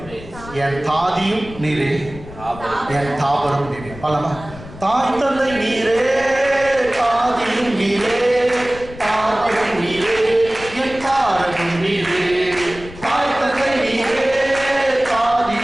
என் தாதியும் நீரே, என் தாபரும் நீரே. பலமா தாய் தந்தை நீரே, தாதியும் நீரே, தாபரும் நீரே, என் தாரகம் நீரே. தாய் தந்தை நீரே,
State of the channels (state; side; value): noise; left; rumble, 16 dB below the sound